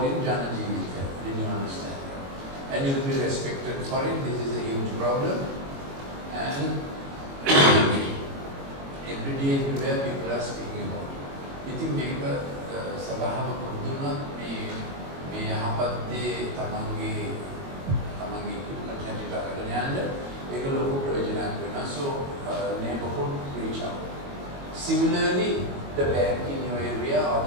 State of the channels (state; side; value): late; left; 22 ms